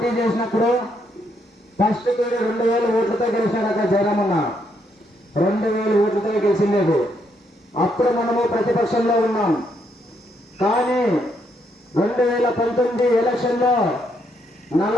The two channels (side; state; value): both; normal; correlation 0.75